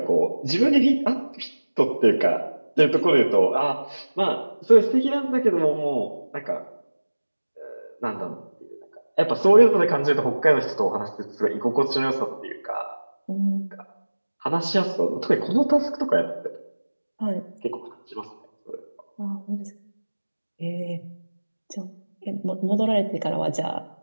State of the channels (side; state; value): both; inverted; correlation -1.00